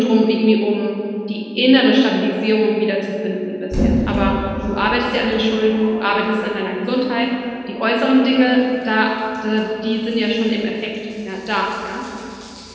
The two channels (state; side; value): identical; both; correlation 1.00